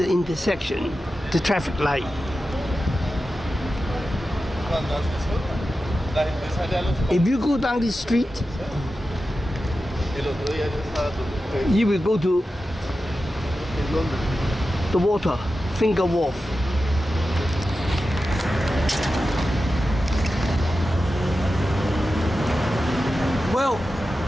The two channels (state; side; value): normal; both; correlation 0.92